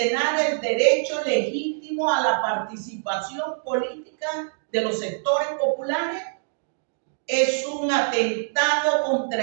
el derecho legítimo a la participación política de los sectores populares. Es un atentado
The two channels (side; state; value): left; silent; digital silence